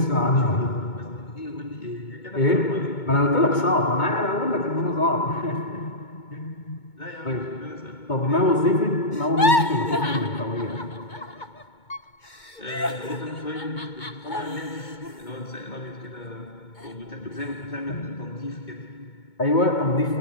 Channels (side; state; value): right; late; 2.2 ms